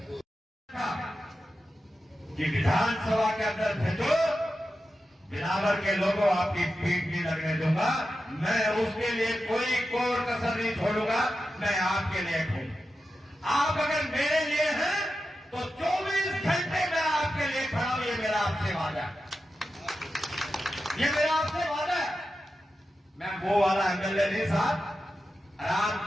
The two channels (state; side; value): normal; both; correlation 0.91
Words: कि विधानसभा के अंदर भेजो, बिलावर के लोगों आपकी पीठ नहीं लगने दूंगा। मैं उसके लिए कोई कोर कसर नहीं छोड़ूंगा। मैं आपके लिए हूं। आप अगर मेरे लिए हैं तो 24 घंटे मैं आपके लिए खड़ा हूं। ये मेरा आपसे वादा है, ये मेरा आपसे वादा है। मैं वो वाला MLA नहीं साहब, आराम